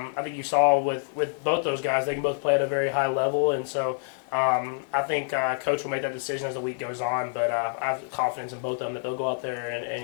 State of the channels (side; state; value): right; silent; digital silence